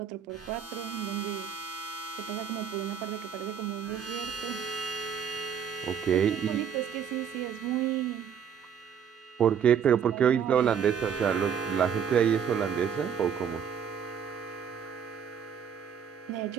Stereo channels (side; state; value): left; quieter; 7.8 dB